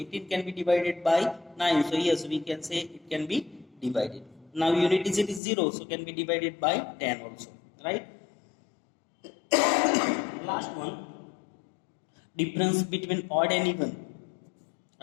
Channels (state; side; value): drops out; right; at 5.4 s